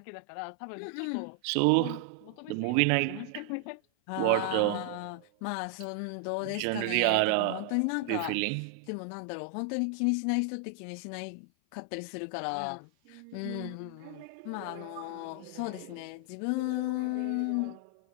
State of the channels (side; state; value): both; different; correlation 0.00